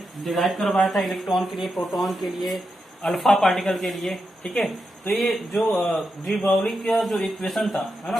डिराइव करवाया था इलेक्ट्रॉन के लिए, प्रोटॉन के लिए, अल्फा पार्टिकल के लिए। ठीक है, तो ये जो डी ब्रोगली का जो इक्वेशन था, है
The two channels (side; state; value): both; normal; correlation 0.86